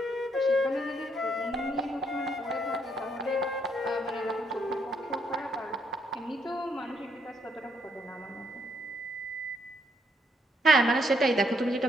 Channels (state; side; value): normal; both; correlation 0.73